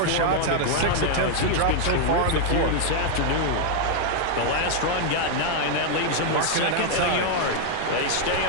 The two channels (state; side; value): different; both; correlation 0.00